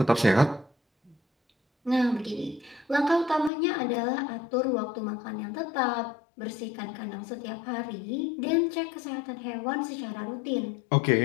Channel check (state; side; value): drops out; right; at 3.5 s